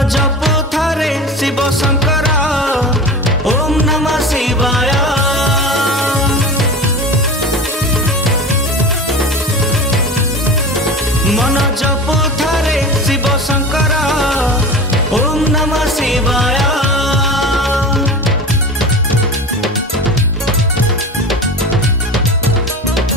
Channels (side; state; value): both; normal; correlation 0.31